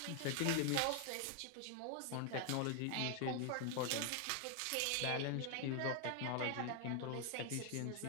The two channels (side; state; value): both; different; correlation 0.00